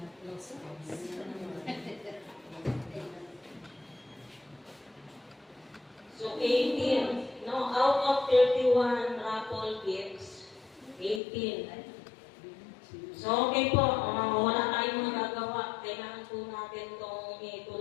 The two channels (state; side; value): drops out; right; at 11.2 s